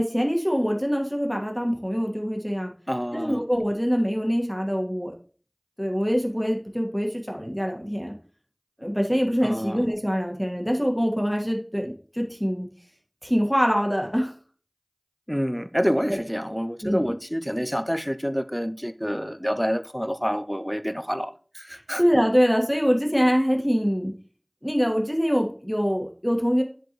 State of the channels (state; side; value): identical; both; correlation 1.00